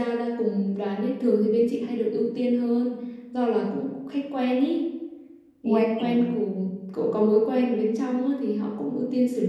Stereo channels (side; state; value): both; identical; correlation 1.00